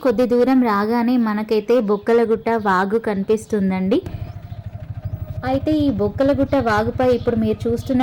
కొద్ది దూరం రాగానే మనకైతే బొక్కలగుట్ట వాగు కనిపిస్తుందండి. అయితే ఈ బొక్కలగుట్ట వాగుపై ఇప్పుడు మీరు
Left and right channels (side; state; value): both; identical; correlation 1.00